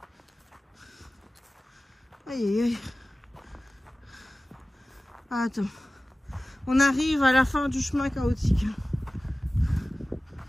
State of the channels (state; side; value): normal; both; correlation 0.97